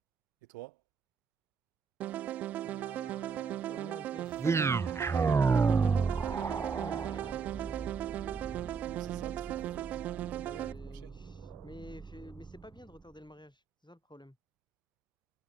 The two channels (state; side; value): quieter; left; 5.7 dB